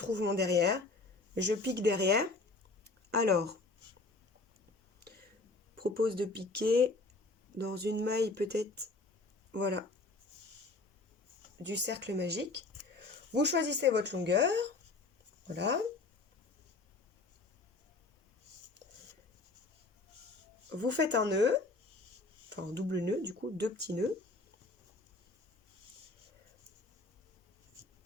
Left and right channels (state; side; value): quieter; right; 3.4 dB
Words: mon derrière. Je pique derrière. Alors, propose de piquer dans une maille peut-être, voilà, du cercle magique. Vous choisissez votre longueur. Voilà. Vous faites un nœud, enfin un double nœud du coup, 2 petits nœuds.